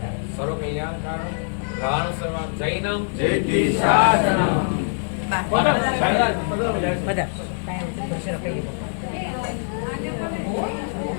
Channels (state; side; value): silent; right; digital silence